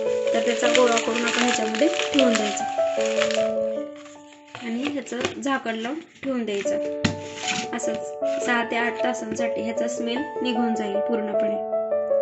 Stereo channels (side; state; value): both; identical; correlation 1.00